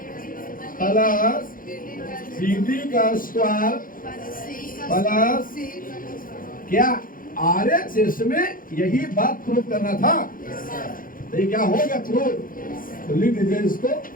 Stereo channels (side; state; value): right; late; 0.40 ms